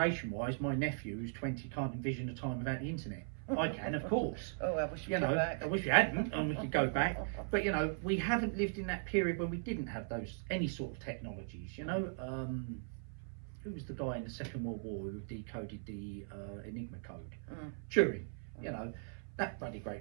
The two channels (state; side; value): silent; left; 52 dB below the other